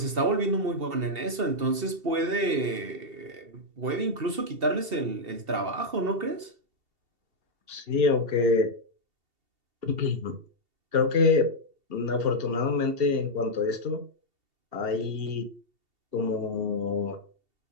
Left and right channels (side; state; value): left; late; 2.7 ms